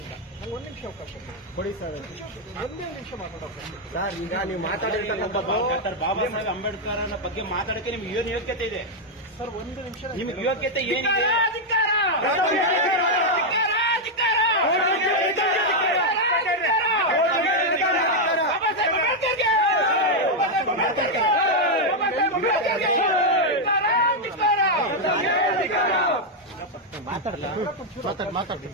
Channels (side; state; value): both; normal; correlation 0.00